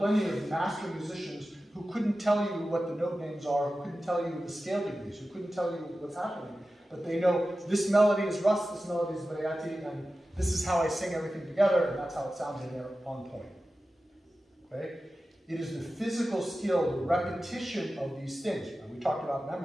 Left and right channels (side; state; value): both; normal; correlation 0.94